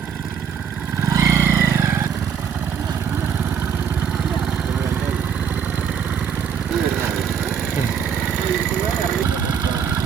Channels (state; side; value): quieter; left; 7.4 dB